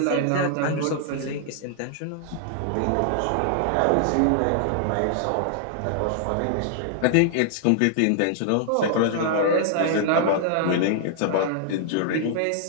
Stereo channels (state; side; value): different; both; correlation -0.01